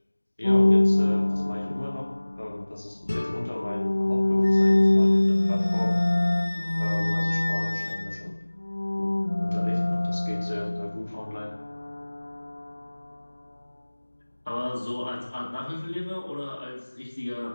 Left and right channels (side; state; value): both; inverted; correlation -1.00